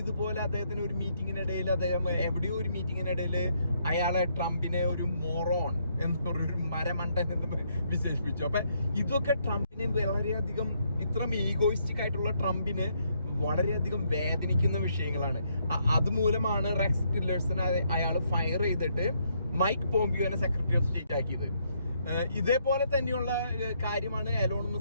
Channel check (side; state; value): both; inverted; correlation -0.73